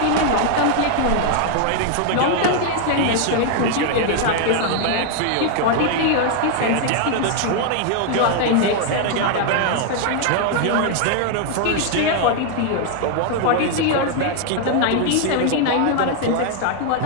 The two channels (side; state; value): both; different; correlation 0.00